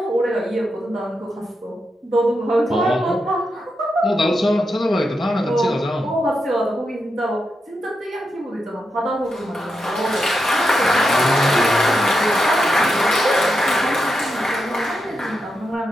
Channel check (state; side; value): normal; both; correlation 0.86